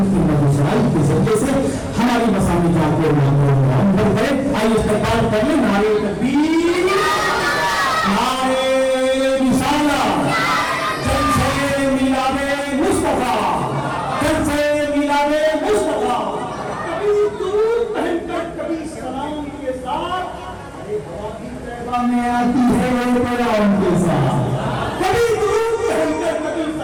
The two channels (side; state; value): both; identical; correlation 1.00